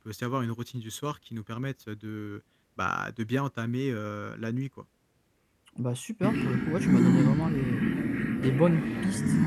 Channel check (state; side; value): identical; both; correlation 1.00